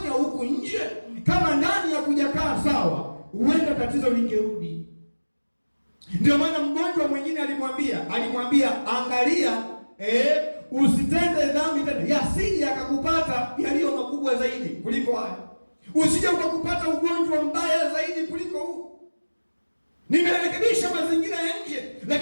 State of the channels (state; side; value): inverted; both; correlation -1.00